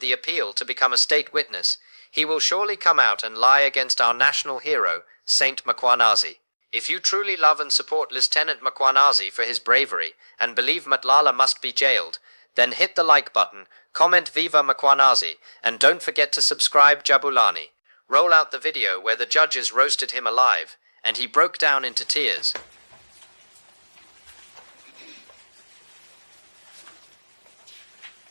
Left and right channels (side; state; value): both; inverted; correlation -1.00